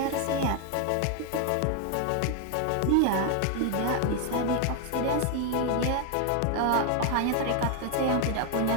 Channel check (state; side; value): different; both; correlation 0.01